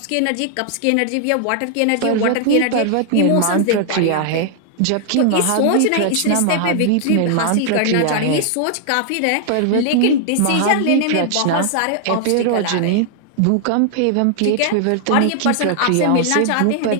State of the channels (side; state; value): both; different; correlation 0.00